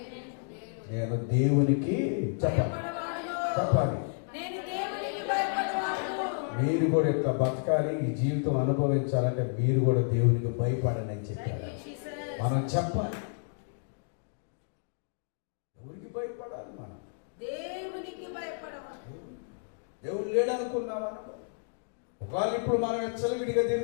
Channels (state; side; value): silent; right; digital silence